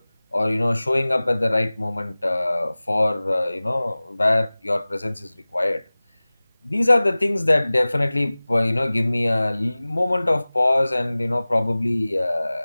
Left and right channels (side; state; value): both; inverted; correlation -0.99